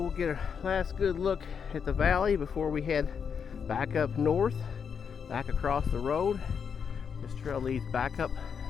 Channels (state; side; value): quieter; right; 6.8 dB